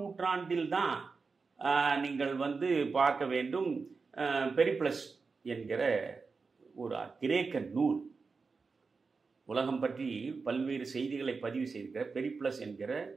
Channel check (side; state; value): left; quieter; 4.6 dB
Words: தான் நீங்கள் பார்க்க வேண்டும். பெரிப்ளஸ் என்கிற ஒரு கிரேக்க நூல், உலகம் பற்றி பல்வேறு செய்திகளை பதிவு செய்திருக்கிற பெரிப்ளஸ் என்கிற